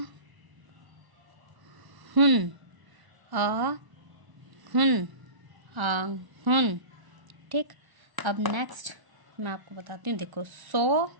हुन, आ हुन, आ हुन। ठीक, अब नेक्स्ट मैं आपको बताती हूँ, देखो 100,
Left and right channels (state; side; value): late; left; 1.0 ms